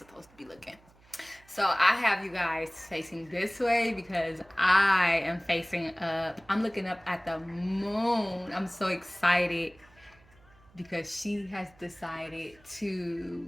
to be looking. So, I have you guys facing this way because I am facing up. I'm looking up at the moon. I'm so excited because she has decided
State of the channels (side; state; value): right; noise; hum, 28 dB below the sound